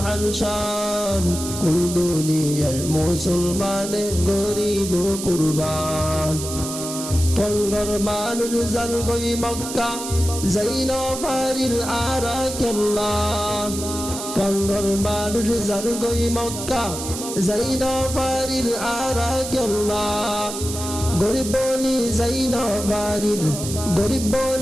শান, কুল দুনিয়ার মুসলমানে গরিব কুরবান। টঙ্গর মানুষ জান গই মক্কা যাইন ফারিল আরাকাল্লাহ, টঙ্গর মানুষ জান গই মক্কা যাইন ফারিল আরাকাল্লাহ। গরিব বলি যাইন ফারিল, গরিব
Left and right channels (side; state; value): right; noise; hiss, 8 dB below the sound